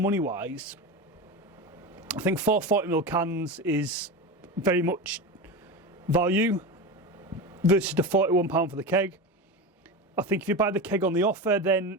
money wise, I think 440ml cans is very much value versus the £41 for the keg. I think if you buy the keg on the offer, then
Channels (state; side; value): normal; both; correlation 0.23